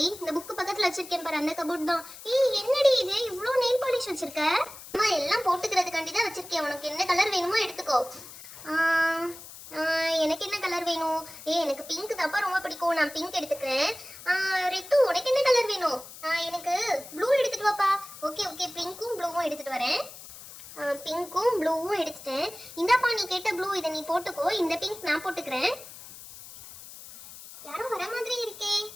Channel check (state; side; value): noise; left; hiss, 15 dB below the sound